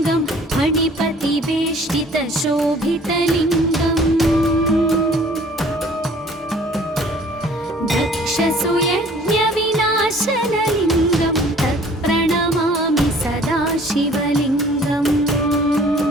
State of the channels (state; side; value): normal; both; correlation 0.53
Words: फणिपतिवेष्टितशोभितलिङ्गम् दक्षसुयज्ञविनाशनलिङ्गं तत्प्रणमामि सदा शिवलिङ्गम्